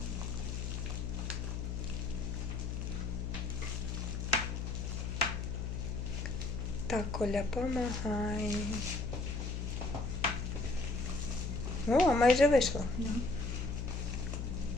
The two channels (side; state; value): left; noise; hum, 3 dB below the sound